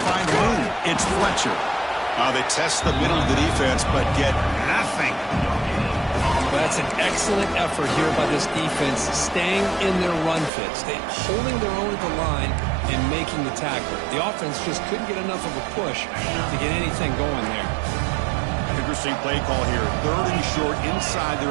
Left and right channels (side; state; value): left; drops out; at 10.5 s